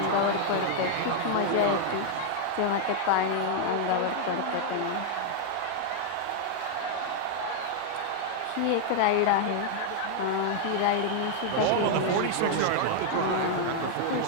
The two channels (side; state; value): both; different; correlation 0.00